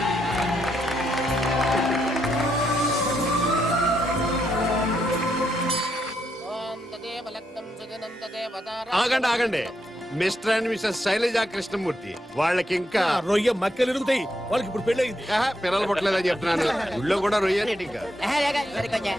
ఆగండి ఆగండి. Mr and Mrs Shailaja Krishnamurthy వాళ్ళకి ఇంకా రొయ్య మక్కలు ఎరుగుతాయి. వాళ్ళకి ఇప్పుడు పెళ్ళయింది. పిల్లలు పుట్టలేదని చెప్తున్నాను. ఊళ్ళో కూడా రొయ్య ఇంకా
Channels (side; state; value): both; normal; correlation 0.79